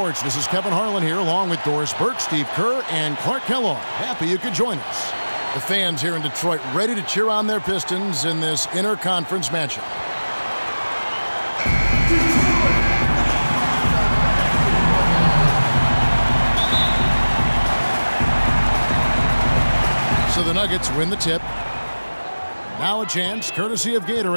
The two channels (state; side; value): inverted; both; correlation -1.00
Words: This is Kevin Harlan here, along with Doris Burke, Steve Kerr, and Clark Kellogg. Happy you could join us. The fans here in Detroit ready to cheer on their Pistons in this interconference matchup. So the Nuggets win the tip. Now a chance, courtesy of